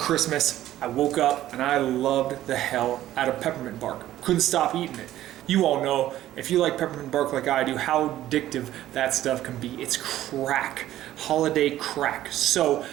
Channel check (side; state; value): left; quieter; 13.6 dB